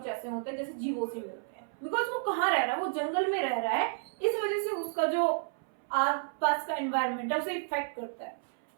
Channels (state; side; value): silent; left; 57 dB below the other